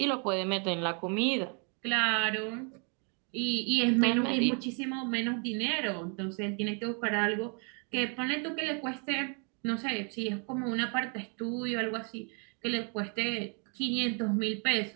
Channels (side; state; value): left; quieter; 37.8 dB